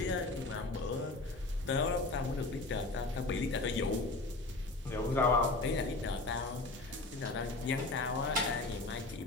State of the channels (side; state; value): right; quieter; 3.1 dB